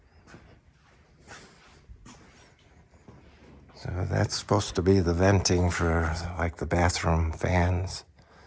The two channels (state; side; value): identical; both; correlation 1.00